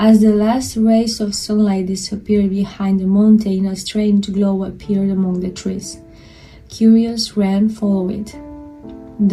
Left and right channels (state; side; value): identical; both; correlation 1.00